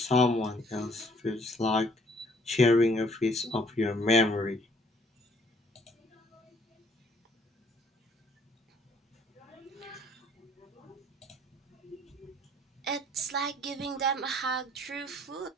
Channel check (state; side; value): normal; both; correlation 0.61